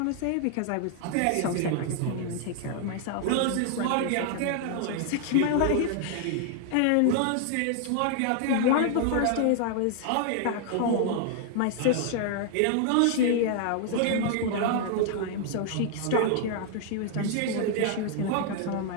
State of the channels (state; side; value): different; both; correlation 0.00